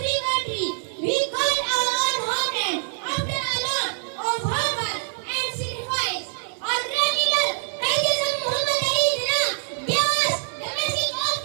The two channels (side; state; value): left; silent; 62 dB below the other